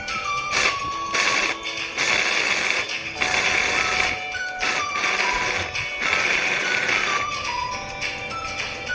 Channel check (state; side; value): identical; both; correlation 1.00